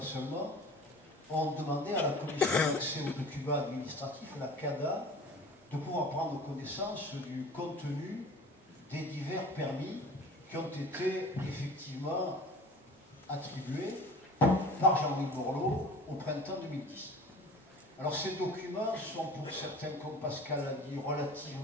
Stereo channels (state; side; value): normal; both; correlation 0.41